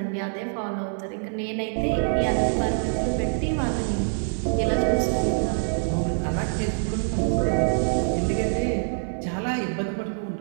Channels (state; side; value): silent; left; digital silence